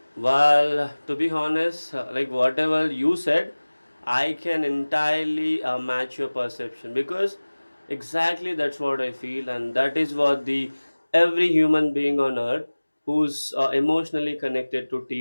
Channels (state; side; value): inverted; both; correlation -1.00